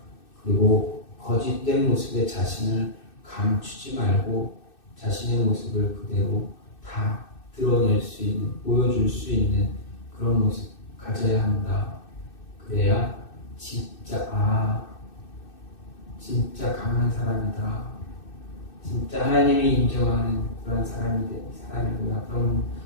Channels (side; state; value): right; late; 2.6 ms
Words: 그리고 거짓된 모습의 자신을 감추지 말고 자신의 모습을 그대로 다 드러낼 수 있는, 보여줄 수 있는 그런 모습 가져야 한다. 그래야 진짜 강한 사람이다. 진짜 하나님이 인정하는 그런 사람이구나.